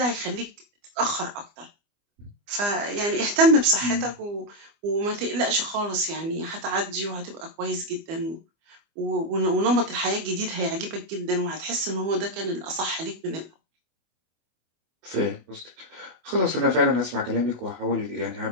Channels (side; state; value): left; late; 25 ms